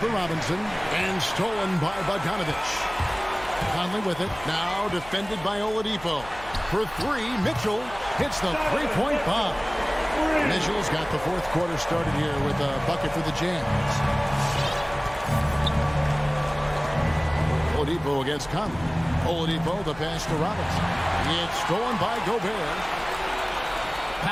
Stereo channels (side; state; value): left; noise; hum, 18 dB below the sound